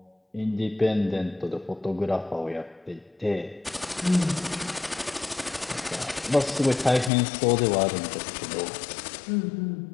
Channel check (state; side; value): drops out; right; at 7.1 s